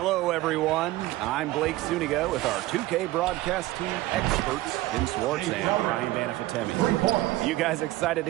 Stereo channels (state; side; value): quieter; left; 17.2 dB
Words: everyone. I'm Blake Zuniga with our 2K broadcast team experts, Tim Swartz and Ryan Banafitemi. You guys excited